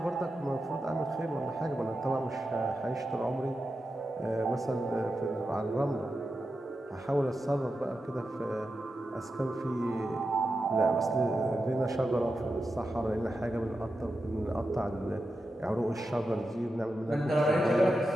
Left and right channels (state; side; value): normal; both; correlation 0.89